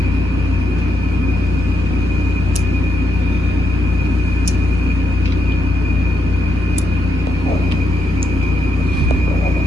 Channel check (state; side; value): noise; left; rumble, 12 dB below the sound